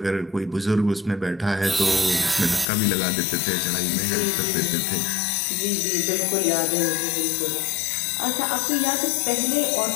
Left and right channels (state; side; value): drops out; right; at 2.7 s